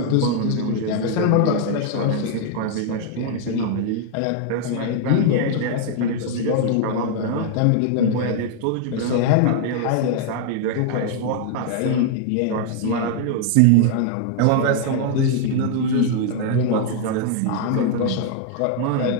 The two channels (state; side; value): different; both; correlation 0.00